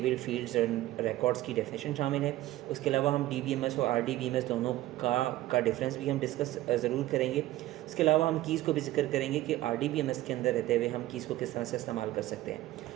फील्ड्स और रिकॉर्ड्स की डेफिनेशन शामिल है। उसके अलावा हम डीबीएमएस और आरडीबीएमएस दोनों का डिफरेंस भी हम डिस्कस ज़रूर करेंगे। इसके अलावा हम कीज़ को भी जिक्र करेंगे कि आरडीबीएमएस के अंदर रहते हुए हम कीज़ को किस तरह से इस्तेमाल कर सकते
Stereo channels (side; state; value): left; quieter; 16.0 dB